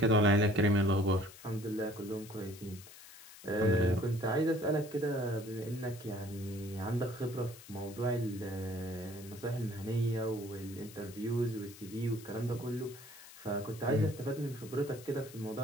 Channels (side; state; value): left; noise; hiss, 18 dB below the sound